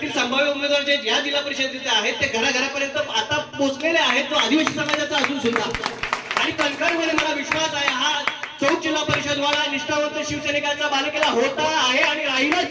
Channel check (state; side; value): identical; both; correlation 1.00